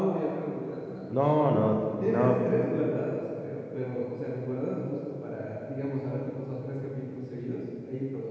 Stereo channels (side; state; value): both; identical; correlation 1.00